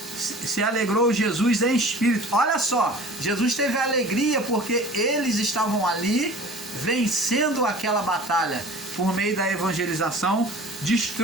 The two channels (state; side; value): normal; both; correlation 0.43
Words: se alegrou Jesus em espírito. Olha só, Jesus teve alegria porque eles estavam ali vencendo aquela batalha por meio da evangelização,